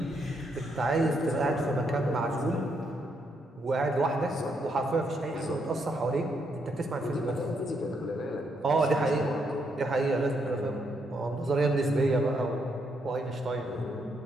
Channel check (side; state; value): both; normal; correlation 0.77